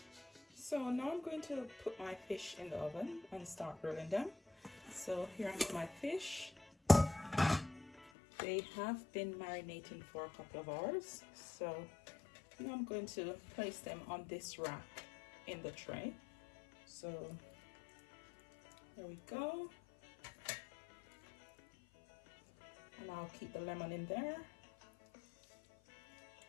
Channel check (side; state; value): right; drops out; at 8.1 s